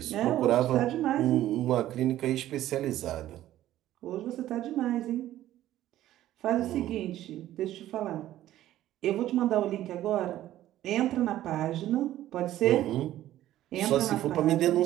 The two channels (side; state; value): left; quieter; 13.6 dB